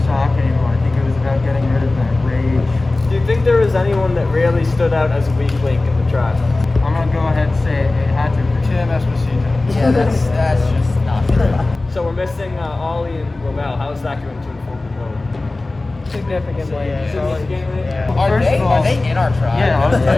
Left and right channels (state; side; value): quieter; right; 3.1 dB